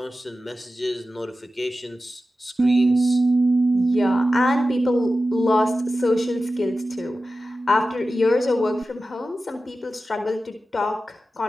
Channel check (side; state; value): both; normal; correlation 0.94